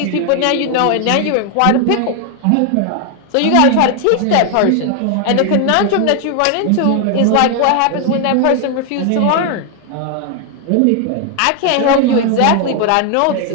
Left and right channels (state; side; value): different; both; correlation 0.00